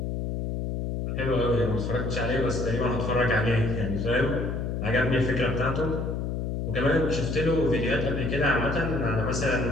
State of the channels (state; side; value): noise; left; hum, 2 dB below the sound